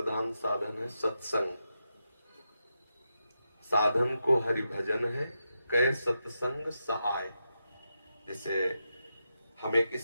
साधन है सत्संग। साधन को हरि भजन है, कह सत्संग सहाय। जैसे हमें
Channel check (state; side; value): inverted; both; correlation -0.87